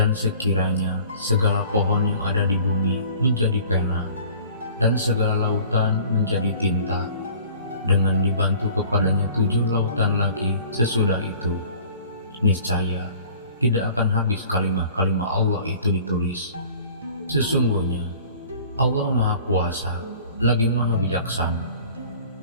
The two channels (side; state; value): both; inverted; correlation -0.48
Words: sekiranya segala pohon yang ada di bumi menjadi pena dan segala lautan menjadi tinta, dengan dibantu kepadanya 7 lautan lagi sesudah itu, niscaya tidak akan habis kalimah-kalimah Allah itu ditulis. Sesungguhnya Allah Maha Kuasa lagi Maha Bijaksana.